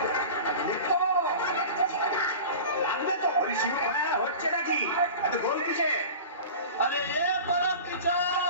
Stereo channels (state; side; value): inverted; both; correlation -0.35